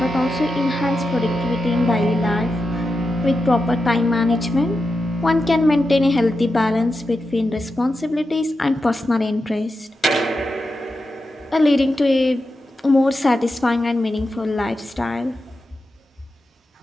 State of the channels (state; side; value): normal; both; correlation 0.89